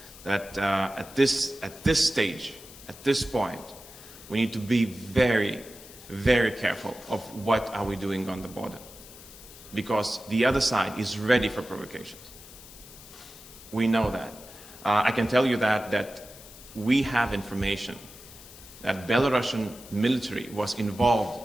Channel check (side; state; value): left; noise; hiss, 18 dB below the sound